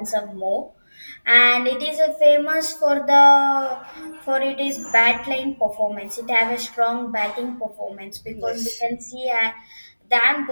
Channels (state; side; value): inverted; both; correlation -1.00